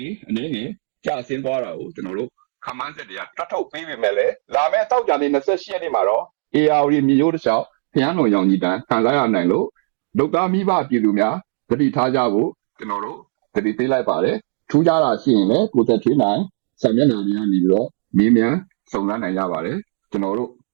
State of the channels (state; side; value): silent; left; digital silence